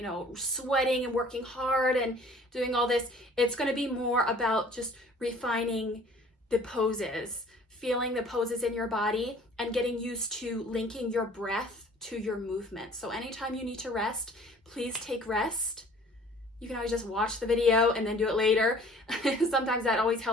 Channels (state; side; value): normal; both; correlation 0.51